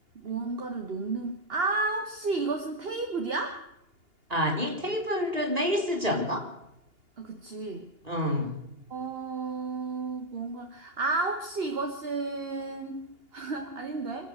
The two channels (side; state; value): left; late; 2.8 ms